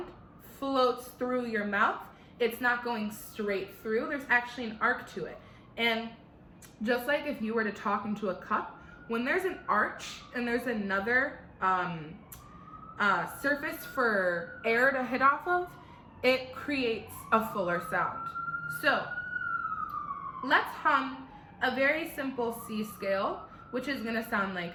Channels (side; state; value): both; identical; correlation 1.00